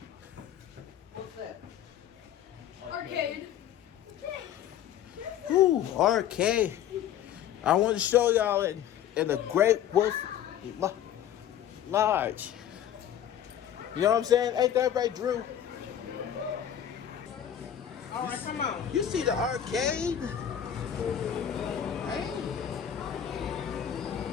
Arcade. Ooh, arcade. I want to show y'all in a great Wolf Lodge. You know what I'm saying? Ain't that right, Drew? All right, come on. You see the arcade? Hey,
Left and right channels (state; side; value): quieter; right; 10.1 dB